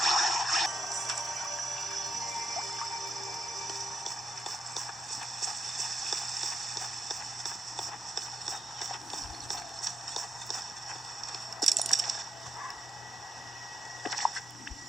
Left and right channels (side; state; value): both; normal; correlation 0.82